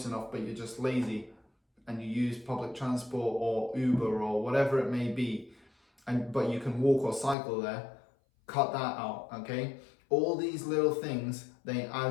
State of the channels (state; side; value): drops out; right; at 7.4 s